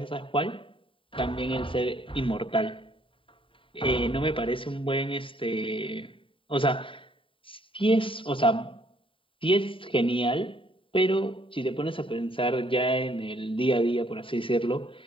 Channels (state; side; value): late; right; 0.25 ms